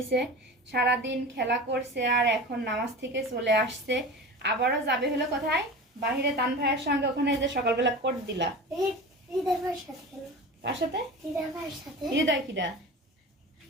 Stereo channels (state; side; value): normal; both; correlation 0.33